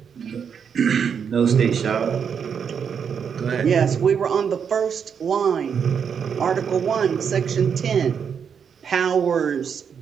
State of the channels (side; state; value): left; quieter; 7.1 dB